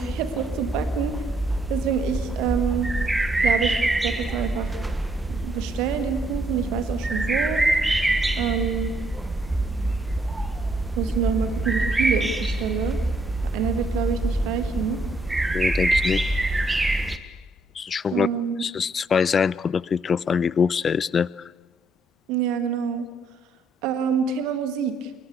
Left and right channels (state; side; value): normal; both; correlation 0.72